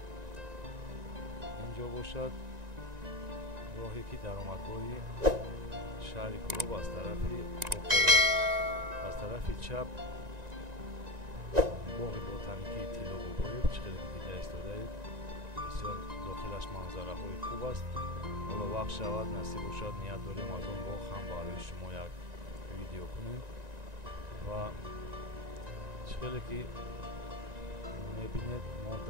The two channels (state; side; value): late; left; 1.9 ms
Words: инҷо бошад. роҳе ки даромадгоҳи шаҳри Кӯлоб аз тарафи Қоқовод, аз тарафи чап боғи ботаникии Тиллобобоев чиқеде ки дида истодаед. бисёр дохилаш манзараҳои хуб аст. ҳоло вақт шавад, насиб бошад, ният дорем аз он боғ ҳам барои шумо як видео кунем ва чиқеде ки мебинед мо